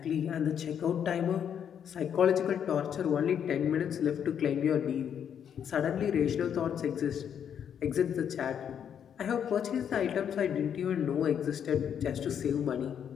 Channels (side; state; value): right; quieter; 8.5 dB